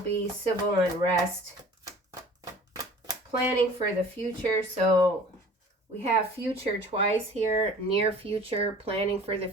civil unrest, planning for the future. So we have future twice here, near future, planning for the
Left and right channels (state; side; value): normal; both; correlation 0.46